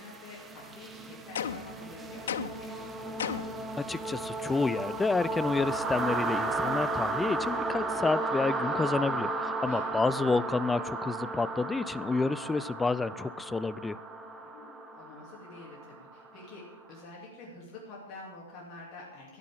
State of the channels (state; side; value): normal; both; correlation 0.75